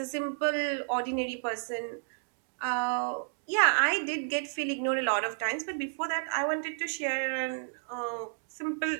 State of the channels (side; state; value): left; silent; digital silence